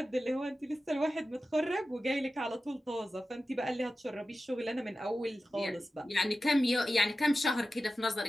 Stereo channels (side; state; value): both; normal; correlation 0.94